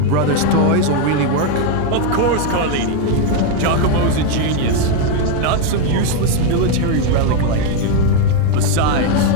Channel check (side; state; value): both; different; correlation 0.02